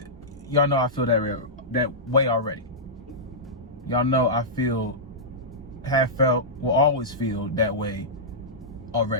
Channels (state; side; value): normal; both; correlation -0.14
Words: Y'all know I feel that way already. Y'all know I have felt, will always feel that way